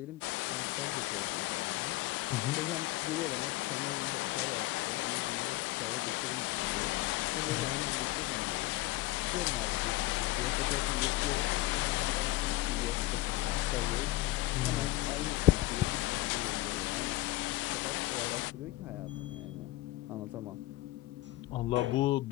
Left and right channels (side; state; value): right; quieter; 17.8 dB